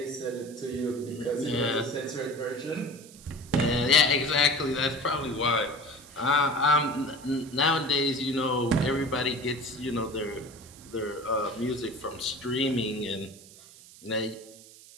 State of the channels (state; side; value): noise; right; hiss, 20 dB below the sound